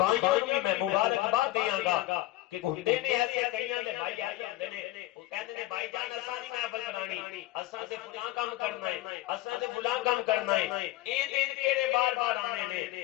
نوں بھی میں مبارکباد دیاں گا کہ ہوندے نے ایسے کئیاں دے بھائی ایسے ہوندے نے وہ کہندے نے بھائی جان اساں نہیں محفل بنانی، اساں تے فلاں کام کرنا ہے، اساں تے فلاں کام کرنا ہے، اے دن کیڑے بار بار آنے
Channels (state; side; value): quieter; right; 17.1 dB